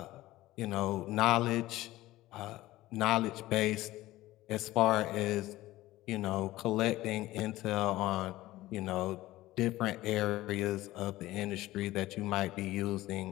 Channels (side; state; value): right; quieter; 16.9 dB